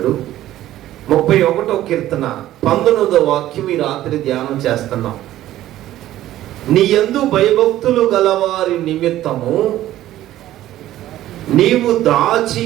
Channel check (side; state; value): left; quieter; 13.9 dB